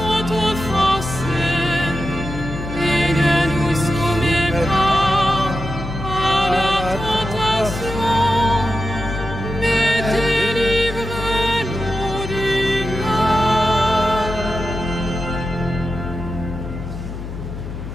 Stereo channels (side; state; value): left; noise; hum, 8 dB below the sound